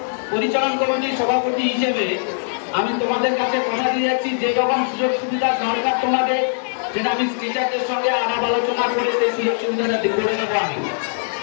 পরিচালন কমিটির সভাপতি হিসেবে আমি তোমাদের কাছে কথা দিয়ে যাচ্ছি, যে রকম সুযোগ সুবিধা দরকার তোমাদের, যেটা আমি টিচারদের সঙ্গে আলাপ আলোচনা করে সেই সুযোগ সুবিধাটা করে নেবো। আমি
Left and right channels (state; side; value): silent; right; digital silence